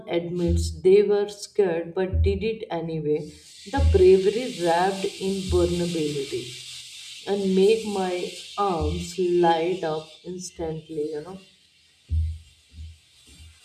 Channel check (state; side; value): identical; both; correlation 1.00